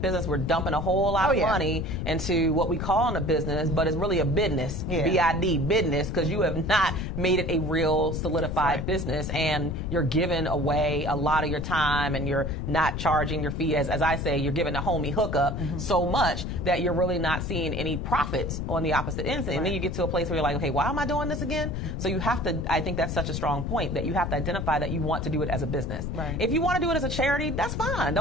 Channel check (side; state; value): left; noise; rumble, 3 dB below the sound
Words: we're dumping a whole lot of money into what we call a business, but it's really a business, B-I-D, business, because you have not made it a real solidified business, and you're giving away a lot of your time, and you're not charging your fee. As I say, you're giving a homie hookup so much that you're really not seeing any profits on the opposite end. And then you get to a place where you're like, okay, why am I doing this again? So you have to, I think that's such a strong point, that you have to identify that you want to do it as a business. Right. If you want to do it as a charity, that's fine.